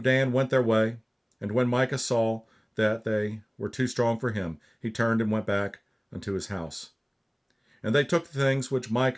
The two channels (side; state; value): both; identical; correlation 1.00